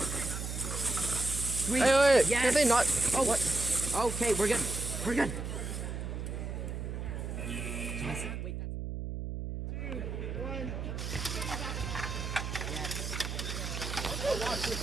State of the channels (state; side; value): noise; right; hum, 5 dB below the sound